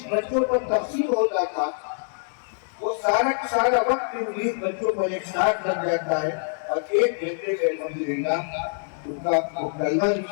بچوں پر تقسیم ہوتا تھا، وہ سارا وقت ان 20 بچوں پر ایک ساتھ لگ جاتا ہے، اور 1 گھنٹے سے الحمدللہ ان کا کلمہ بھی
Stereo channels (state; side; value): silent; right; digital silence